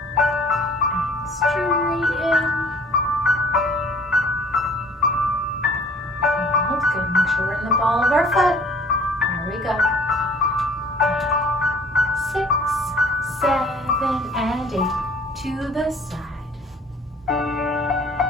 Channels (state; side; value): normal; both; correlation 0.53